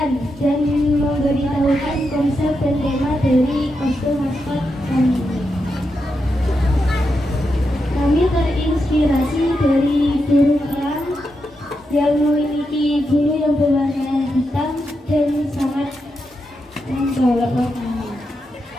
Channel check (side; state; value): both; normal; correlation 0.86